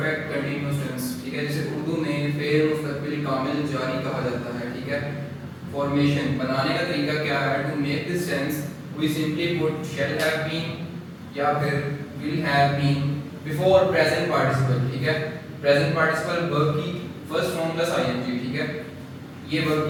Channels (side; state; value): both; identical; correlation 1.00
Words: continuous tense. ठीक है, जिसे उर्दू में फेर मुस्तकबिल कामिल जारी कहा जाता है। ठीक है, फॉर्मेशन बनाने का तरीका क्या है? To make this tense we simply put shall have been या फिर will have been before present participle. ठीक है, प्रेजेंट पार्टिसिपल वर्ब की फर्स्ट फॉर्म प्लस आईएनजी। ठीक है, ये वर्ब